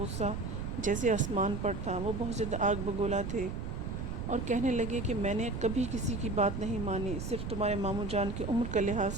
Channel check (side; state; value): right; noise; rumble, 5 dB below the sound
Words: جیسے آسمان پر تھا۔ وہ بہت زیادہ آگ بگولا تھے اور کہنے لگے کہ میں نے کبھی کسی کی بات نہیں مانی، صرف تمہارے ماموں جان کی عمر کا لحاظ